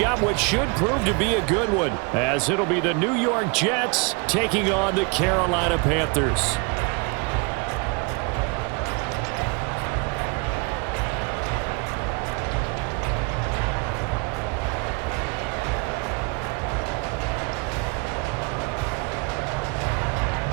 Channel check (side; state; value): left; quieter; 31.1 dB